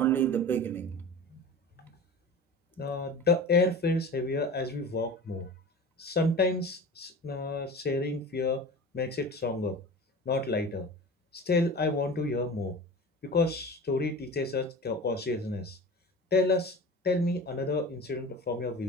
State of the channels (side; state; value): both; normal; correlation 0.34